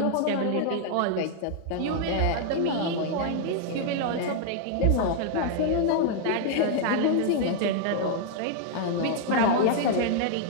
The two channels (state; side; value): different; both; correlation -0.01